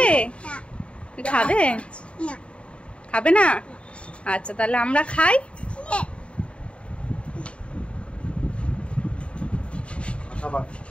খাবে খাবে না? আচ্ছা তাহলে আমরা খাই।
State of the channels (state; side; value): late; right; 0.059 ms